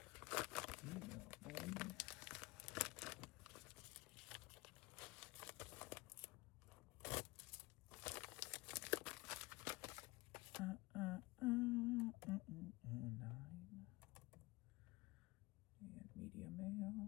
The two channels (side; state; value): right; quieter; 22.0 dB